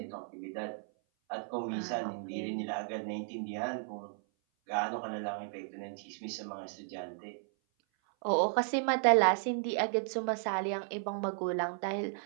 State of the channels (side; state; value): left; silent; 55 dB below the other